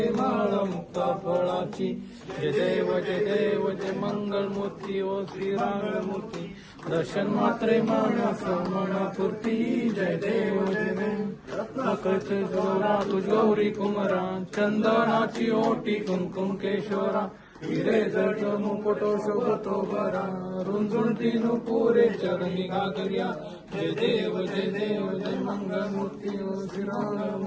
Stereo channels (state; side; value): identical; both; correlation 1.00